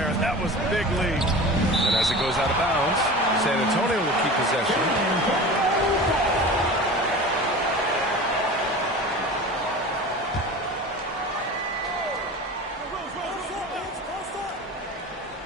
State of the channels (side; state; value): both; normal; correlation 0.34